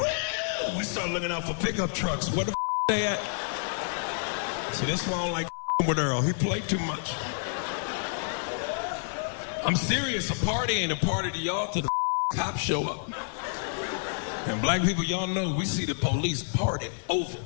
We start looking out for pickup trucks. Where the they at? See, that's why I don't like with Earl. He played too much. I'm serious. A party ain't a party to y'all till the cops show up. And black people, y'all know we see the police party over.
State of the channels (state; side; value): silent; right; 58 dB below the other